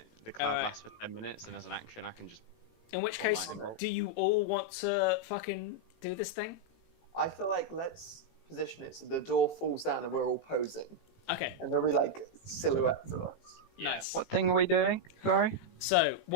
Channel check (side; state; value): right; late; 18 ms